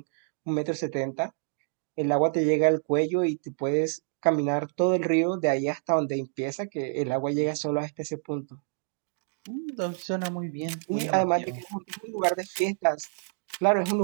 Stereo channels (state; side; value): silent; left; digital silence